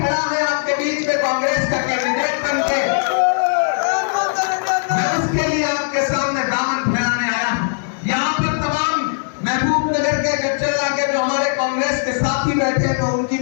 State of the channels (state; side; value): silent; right; digital silence